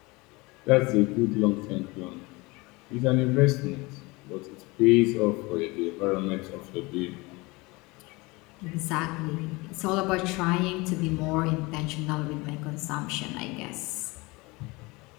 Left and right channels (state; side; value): quieter; right; 24.3 dB